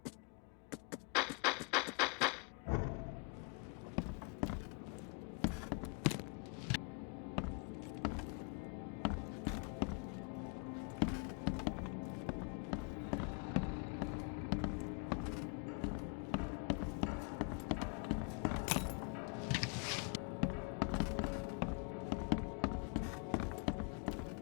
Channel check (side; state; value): right; quieter; 36.1 dB